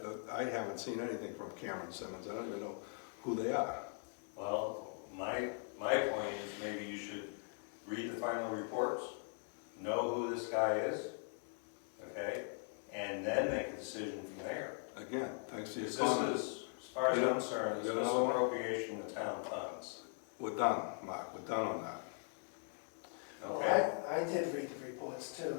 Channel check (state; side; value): silent; right; 51 dB below the other